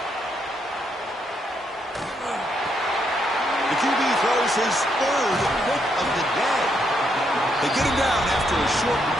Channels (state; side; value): normal; both; correlation 0.76